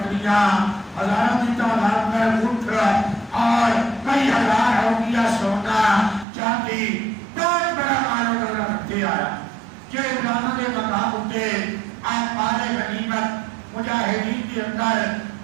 ہزاروں کی تعداد میں اونٹ اور کئی ہزار اوقیہ سونا چاندی بہت بڑا مال و دولت رکھتے آیا کہ علماء نے مقام ہوتے آپ مال غنیمت مجاہدین کے اندر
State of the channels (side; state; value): left; drops out; at 6.2 s